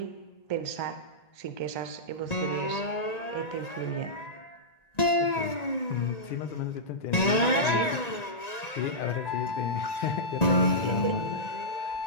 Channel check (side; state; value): right; late; 1.9 ms